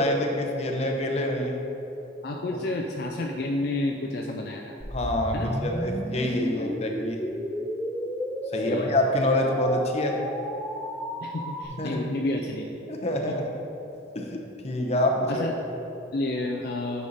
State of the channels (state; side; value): normal; both; correlation 0.36